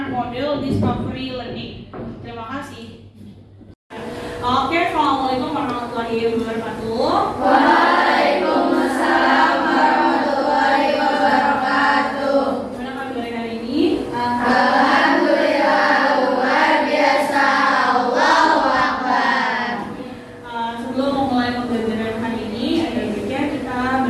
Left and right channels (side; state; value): both; identical; correlation 1.00